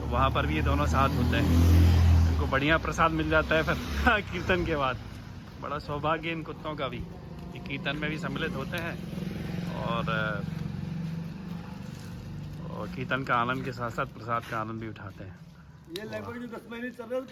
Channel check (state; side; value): identical; both; correlation 1.00